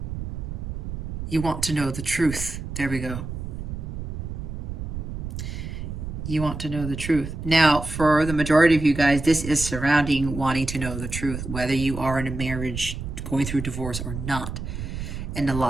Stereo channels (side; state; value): right; noise; rumble, 6 dB below the sound